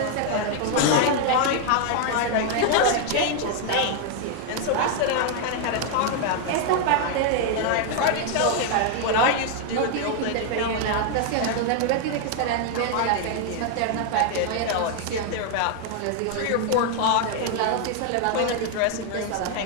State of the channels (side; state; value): both; different; correlation 0.00